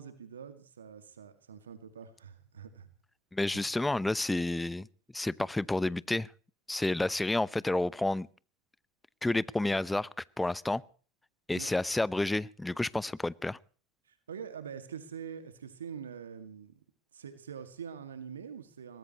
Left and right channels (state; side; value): normal; both; correlation 0.94